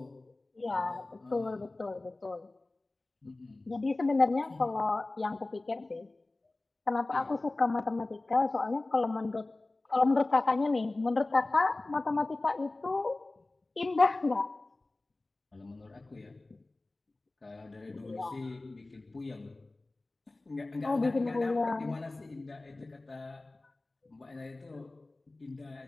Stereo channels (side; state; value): right; quieter; 3.0 dB